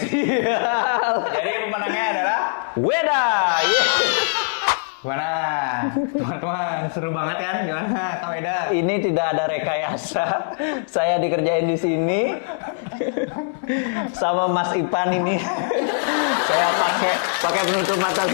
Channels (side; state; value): right; silent; digital silence